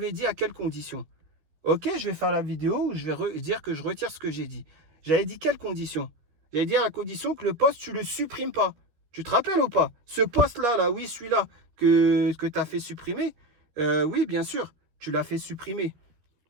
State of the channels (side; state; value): left; late; 13 ms